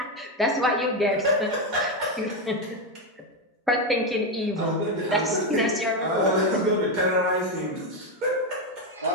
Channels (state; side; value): normal; both; correlation 0.08